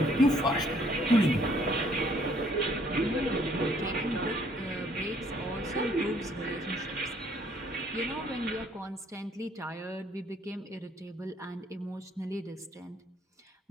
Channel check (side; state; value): both; normal; correlation 0.63